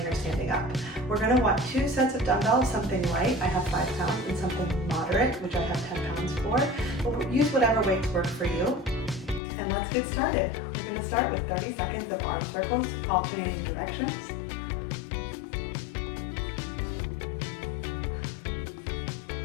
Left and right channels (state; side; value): drops out; right; at 9.4 s